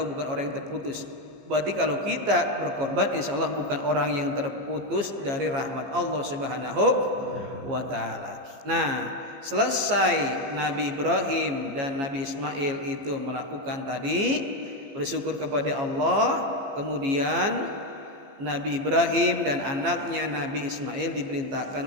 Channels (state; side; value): late; left; 15 ms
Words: bukan orang yang terputus. Berarti kalau kita berkorban, insya Allah bukan orang yang terputus dari rahmat Allah Subhanahu wa Ta'ala. Nah, selesai Nabi Ibrahim dan Nabi Ismail itu melakukan tadi, bersyukur kepada Allah, kemudian Nabi Ibrahim dan anaknya Nabi Ismail